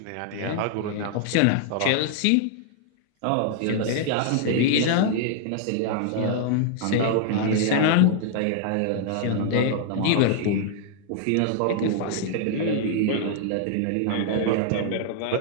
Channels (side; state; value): both; different; correlation -0.01